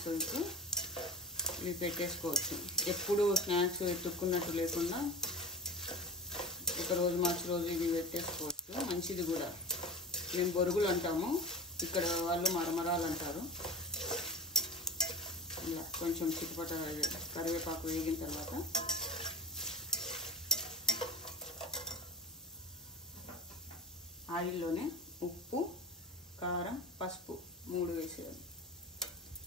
ఇవి పెట్టేసుకోవచ్చు. ఎప్పుడు స్నాక్స్ ఎత్తుక్కున్నట్టు లేకుండా ఒకరోజు మార్చి రోజు ఇవి పెట్టేసుకోవచ్చు. మంచిది కూడా. మేము బొరుగులు అంటాము, ఇక్కడ వాళ్ళు మరమరాలు అంటారు. ఇలా కొంచెం చిట్టుపట కరివేపాకు వేగిన తర్వాత ఆయిల్లోనే ఉప్పు, కారం, పసుపు 3 వేసేయాలి.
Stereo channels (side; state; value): both; normal; correlation 0.32